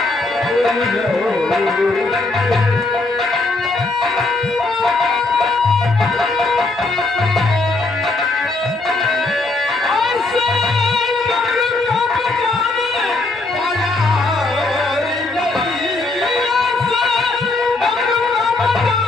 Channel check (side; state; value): right; quieter; 3.2 dB